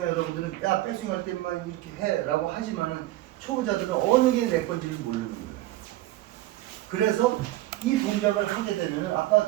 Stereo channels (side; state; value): left; quieter; 16.2 dB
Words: 여러분들은 야 백스윙 할 때만 이렇게 해 라고 하지만은 초보자들은 어느 게 내 건지를 모르는 거예요. 그래서 이 동작을 하게 되면은 아까